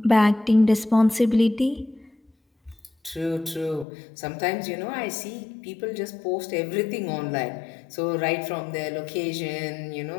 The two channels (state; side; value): drops out; right; at 3.9 s